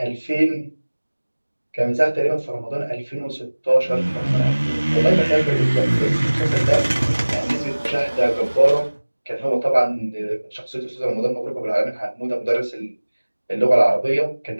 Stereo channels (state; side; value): inverted; both; correlation -1.00